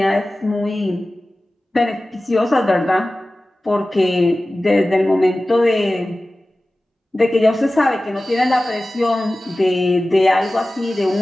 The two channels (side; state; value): both; normal; correlation 0.96